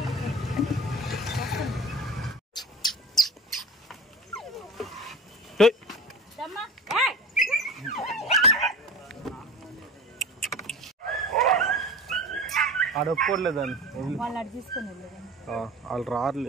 ఆడ ఒప్పుకోలేదని వాళ్ళు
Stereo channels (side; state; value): both; normal; correlation 0.35